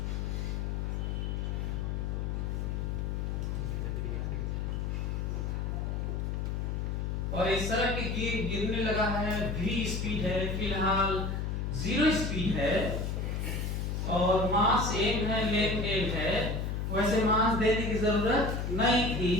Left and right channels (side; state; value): left; noise; hum, 1 dB below the sound